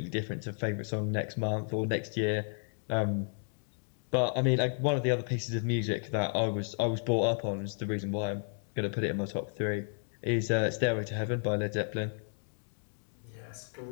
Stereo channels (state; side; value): silent; right; 56 dB below the other